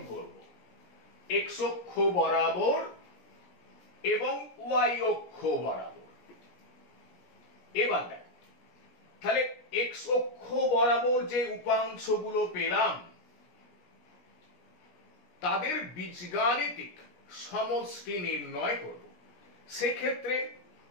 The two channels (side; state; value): right; late; 17 ms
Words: করব, x অক্ষ বরাবর এবং y অক্ষ বরাবর। এবার দেখ, তাহলে x অক্ষ বরাবর যে উপাংশগুলো পেলাম তাদের বীজগাণিতিক সমষ্টি নির্ণয় করব। সেক্ষেত্রে